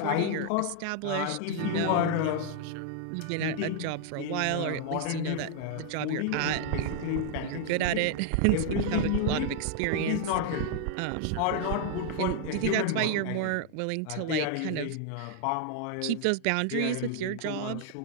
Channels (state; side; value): different; both; correlation 0.00